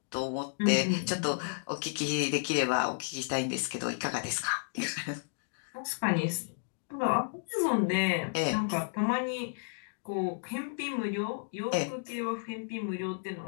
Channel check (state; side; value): silent; right; digital silence